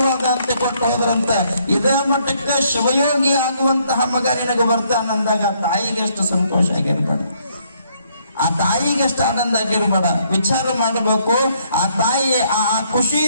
ಅಂತ ಕೊಟ್ಟು ಹೋದ್ರಂತ. ಇದೇ ಮಟ್ಟಕ್ಕೆ ಶಿವಯೋಗಿ ಆಗುವಂತಹ ಮಗ ನಿನಗೆ ಬರ್ತಾನಂದಾಗ ತಾಯಿಗೆ ಎಷ್ಟು ಸಂತೋಷ ಆಗಿರ್ಬೇಡ, ಆ ತಾಯಿಗೆ ಎಷ್ಟು ಆನಂದ ಆಗಿರ್ಬೇಡ. ವಿಚಾರ ಮಾಡಬೇಕು. ಆ ತಾಯಿ ಆ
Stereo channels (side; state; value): both; inverted; correlation -0.69